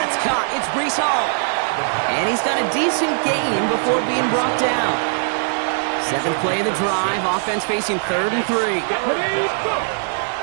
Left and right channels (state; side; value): silent; left; digital silence